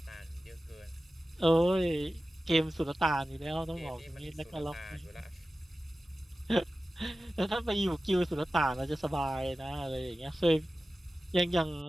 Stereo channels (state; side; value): normal; both; correlation 0.95